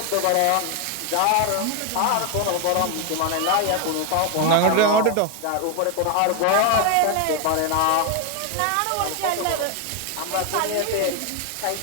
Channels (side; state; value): both; different; correlation 0.01